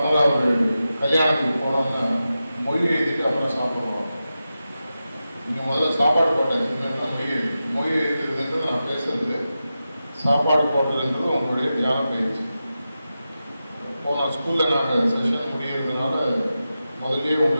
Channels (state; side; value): inverted; both; correlation -0.92